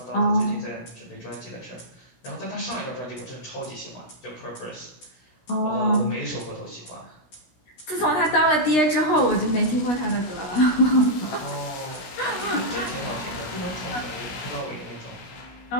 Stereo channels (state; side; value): late; right; 16 ms